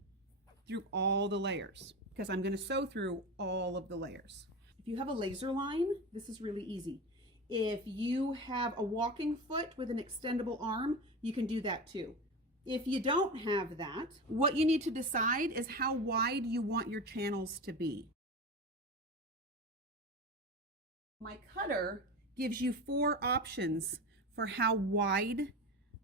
through all the layers because I'm going to sew through all of the layers. If you have a laser line, this is really easy. If you have a walking foot with an extendable arm, you can do that too. If you don't have that, what you need to decide is how wide you want your channels to be. My cutter gives you 4 options for how wide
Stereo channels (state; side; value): normal; both; correlation 0.25